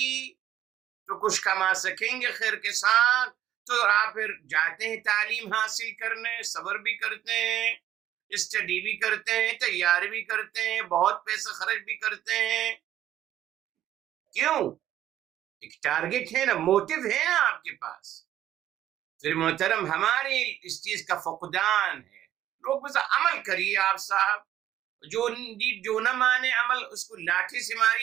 تو کچھ کما سکیں گے خیر کے ساتھ، تو آپ پھر جاتے ہیں تعلیم حاصل کرنے، صبر بھی کرتے ہیں، اسٹڈی بھی کرتے ہیں، تیاری بھی کرتے ہیں، بہت پیسہ خرچ بھی کرتے ہیں. کیوں؟ ایک ٹارگٹ ہے نا، موٹو ہے نا آپ کے پاس. پھر محترم ہماری اس چیز کا فقدان ہے. لوگ بس عمل کریے آپ صاحب، جو نہ مانے عمل اس کو لاٹھی سے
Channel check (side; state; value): left; quieter; 11.9 dB